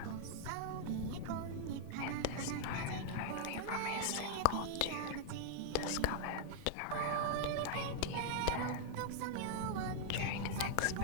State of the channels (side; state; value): both; different; correlation -0.01